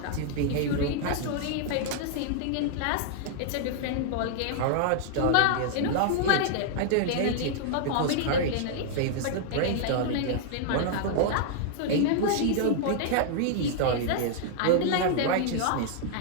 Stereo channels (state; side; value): different; both; correlation -0.01